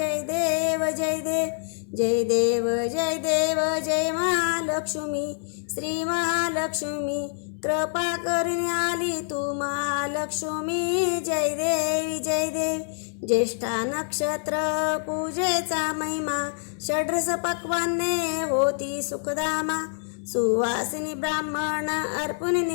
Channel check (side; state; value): right; silent; 61 dB below the other